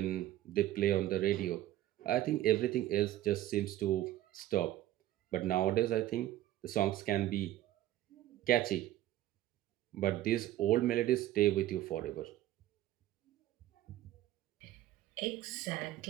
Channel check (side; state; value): left; quieter; 14.1 dB